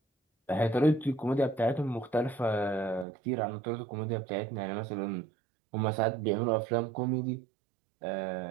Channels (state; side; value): drops out; left; at 3.1 s